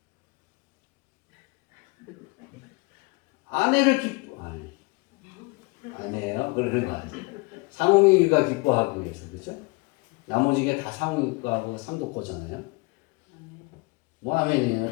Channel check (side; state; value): right; quieter; 27.0 dB